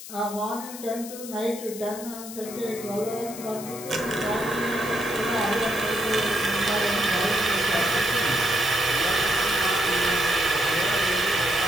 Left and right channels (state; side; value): noise; left; hiss, 12 dB below the sound